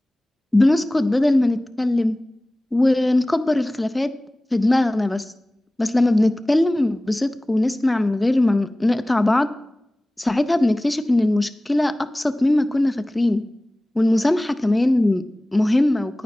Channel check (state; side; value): normal; both; correlation 0.98